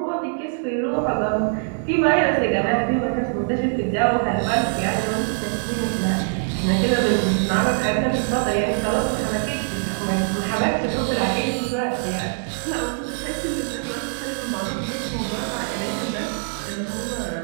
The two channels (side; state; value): left; silent; 59 dB below the other